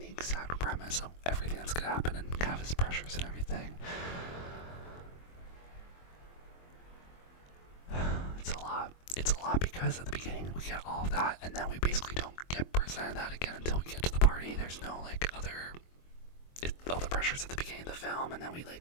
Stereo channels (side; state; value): right; late; 23 ms